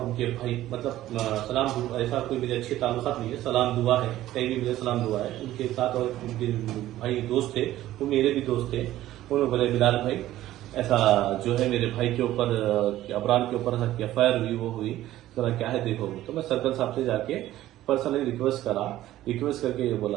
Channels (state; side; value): quieter; left; 14.4 dB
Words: उनके भाई मतलब सलाम दुआ, ऐसा कोई मेरे अच्छे ताल्लुकात नहीं है, सलाम दुआ है, कहीं भी मेरे सलाम दुआ है। उनके साथ और उनके भाई दोस्त थे, वो मेरे भी दोस्त थे। उन्होंने बोले बिलाल भाई ऐसा जो है मेरे भाई के ऊपर अबरार के ऊपर एफआईआर हुई, वो हुई जरा क्या है देखो। तो मैं सर्कल साहब से जाके पर्सनली रिक्वेस्ट करके ये